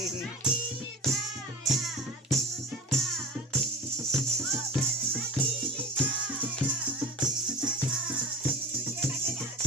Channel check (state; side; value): normal; both; correlation 0.36